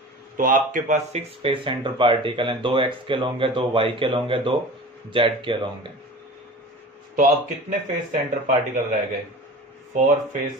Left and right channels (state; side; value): normal; both; correlation 0.37